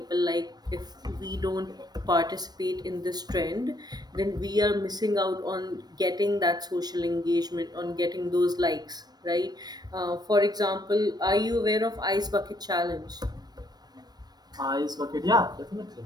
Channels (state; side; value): late; left; 0.19 ms